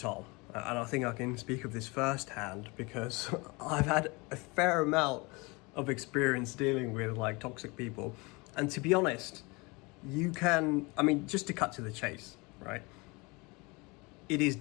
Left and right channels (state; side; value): quieter; right; 26.6 dB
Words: and I think I can speak of this firsthand because I've had a fair amount of experience dealing with like toxic people. And to be honest, just to cut to the chase, right? It is